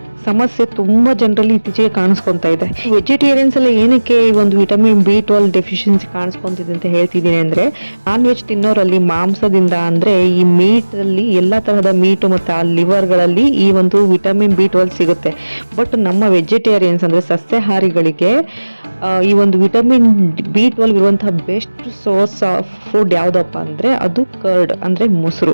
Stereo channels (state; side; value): inverted; both; correlation -1.00